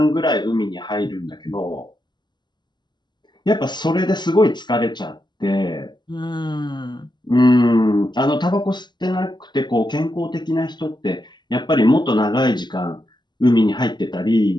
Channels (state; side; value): late; right; 0.21 ms